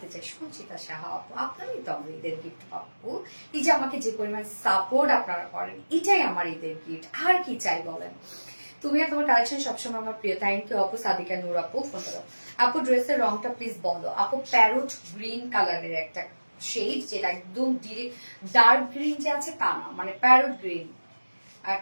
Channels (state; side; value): inverted; both; correlation -1.00